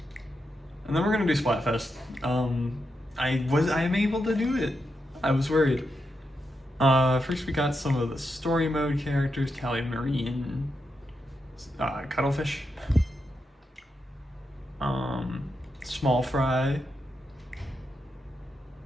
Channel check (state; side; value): normal; both; correlation 0.85